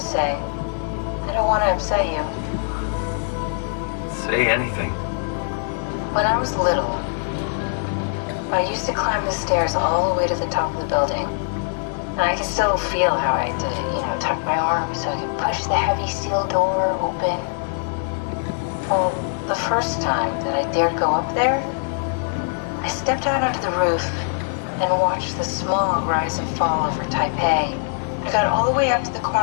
say. I don't want to upset you. Say anything. When I was little, I used to climb the stairs all the way to the top of the building. And I can still feel how I had to, tuck my arm so I could push the heavy steel door open. Well, the first time that I dared go up there, I stepped out onto the roof and watched the smog rise and fall over Taipei. I got all the way up to the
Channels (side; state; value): right; silent; 64 dB below the other